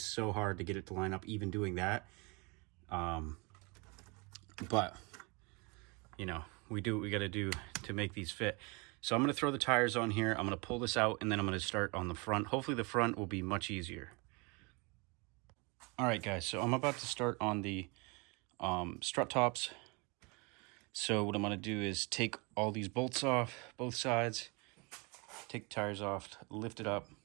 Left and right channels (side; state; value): left; quieter; 29.5 dB